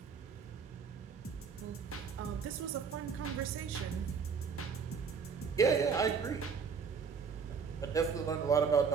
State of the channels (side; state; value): left; quieter; 5.9 dB